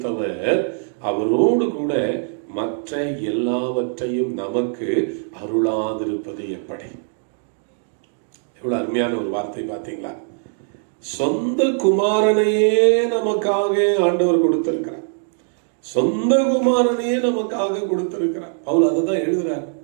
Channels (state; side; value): silent; left; digital silence